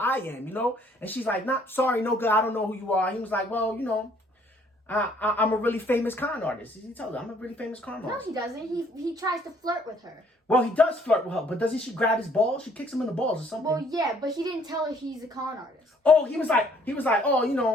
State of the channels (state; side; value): normal; both; correlation 0.63